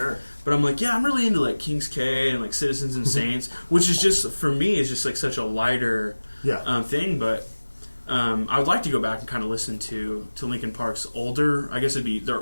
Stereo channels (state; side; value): inverted; both; correlation -1.00